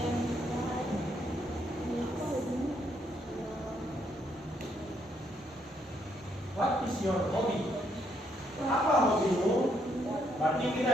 What is your hobby? Apa hobimu? Berarti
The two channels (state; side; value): normal; both; correlation 0.73